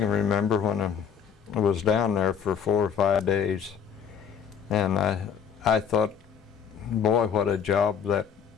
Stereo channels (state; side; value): quieter; right; 7.5 dB